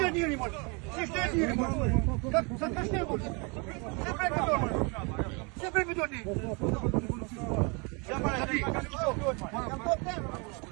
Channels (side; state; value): left; quieter; 31.4 dB